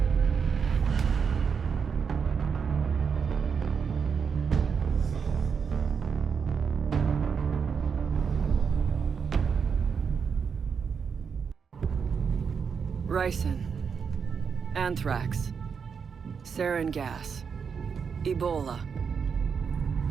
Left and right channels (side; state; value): left; quieter; 6.3 dB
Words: Ricin. Anthrax. Sarin gas. Ebola.